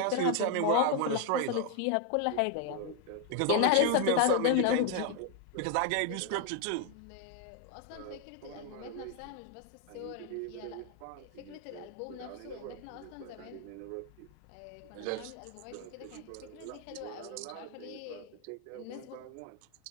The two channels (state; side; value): different; both; correlation 0.01